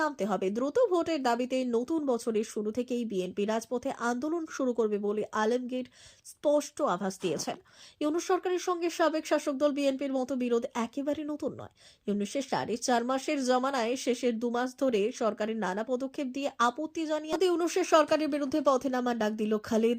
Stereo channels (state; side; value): identical; both; correlation 1.00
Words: নামতে হবে। দ্রুত ভোটের দাবিতে নতুন বছরের শুরু থেকেই বিএনপি রাজপথে আন্দোলন শুরু করবে বলে আলমগীর স্পষ্ট আভাস দিয়েছেন। ইউনূস সরকারের সঙ্গে সাবেক শাসক দল বিএনপির মতো বিরোধ একেবারে নতুন নয়। ইউনূসের 4.5 মাসের জমানায় শেষের 2 মাস ধরে সরকারের নানা পদক্ষেপ দিয়ে আপত্তি জানিয়ে ইউনূসের সরকারের বিরুদ্ধে পথে নামার ডাক দিল